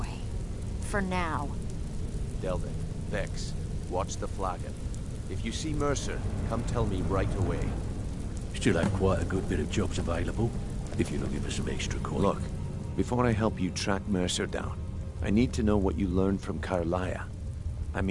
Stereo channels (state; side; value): identical; both; correlation 1.00